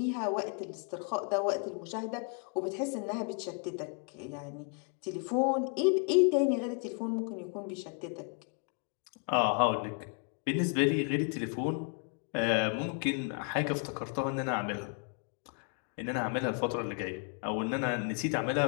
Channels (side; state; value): right; quieter; 39.1 dB